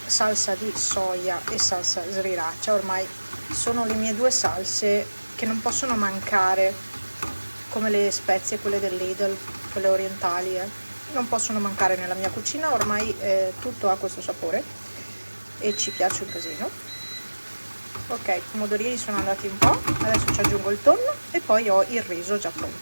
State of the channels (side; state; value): both; inverted; correlation -1.00